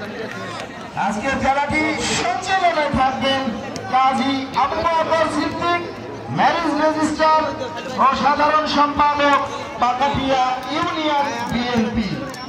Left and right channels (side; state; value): both; identical; correlation 1.00